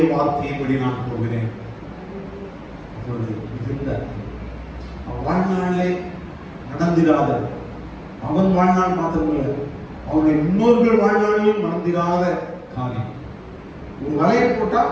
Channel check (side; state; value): both; identical; correlation 1.00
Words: வார்த்தையின்படி நான் போகிறேன். அப்பொழுது மிகுந்த வாழ்நாளே நடந்திராத, அவன் வாழ்நாள் மாத்திரமல்ல, அவனுடைய முன்னோர்கள் வாழ்நாளிலும் நடந்திராத காரியம். ஒரு வலையை போட்டா